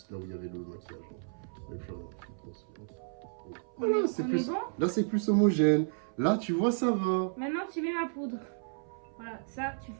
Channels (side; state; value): left; silent; 55 dB below the other